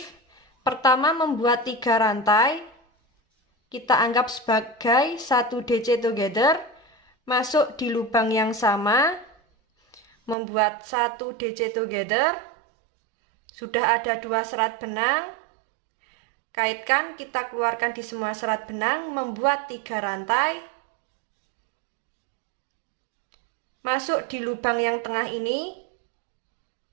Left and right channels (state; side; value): drops out; left; at 10.4 s